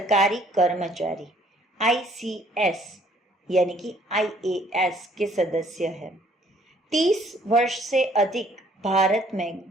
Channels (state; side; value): normal; both; correlation 0.61